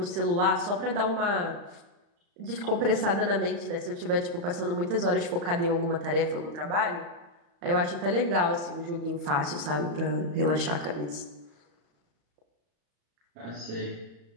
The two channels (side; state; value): left; late; 35 ms